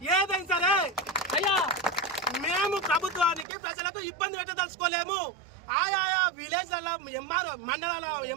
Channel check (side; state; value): left; drops out; at 3.5 s